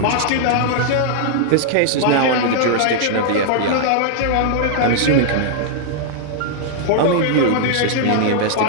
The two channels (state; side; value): different; both; correlation -0.01